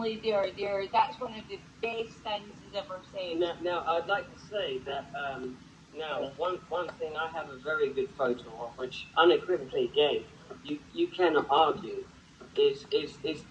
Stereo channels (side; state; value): both; identical; correlation 1.00